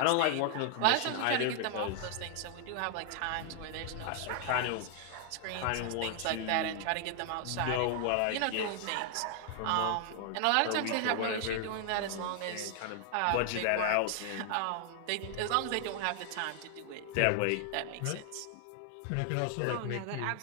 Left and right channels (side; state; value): both; different; correlation 0.00